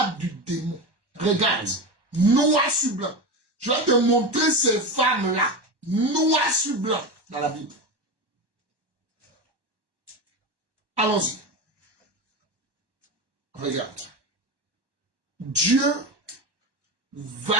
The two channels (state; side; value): late; left; 1.1 ms